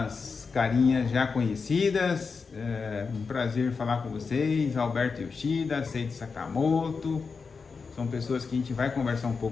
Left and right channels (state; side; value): quieter; right; 5.0 dB